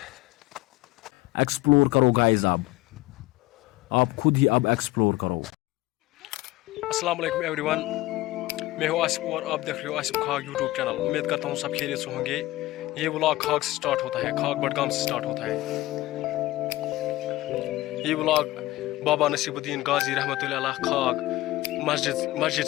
Explore करो गाइस। अब आप खुद ही अब एक्सप्लोर करो। अस्सलाम वालेकुम एवरीवन, मैं हूँ आसिफ और आप देख रहे हो आसिफ खाग यूट्यूब चैनल। उम्मीद करता हूँ सब खैरियत से होंगे। ये व्लॉग खाग से स्टार्ट होता है, खाग बडगाम से स्टार्ट होता है। ये व्लॉग बाबा नसीबुद्दीन गाजी रहमतुल्लाह अलैह खाग मस्जिद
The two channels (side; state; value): right; quieter; 17.8 dB